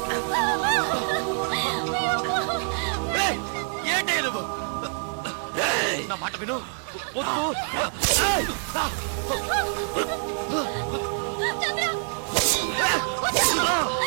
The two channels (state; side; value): silent; left; 61 dB below the other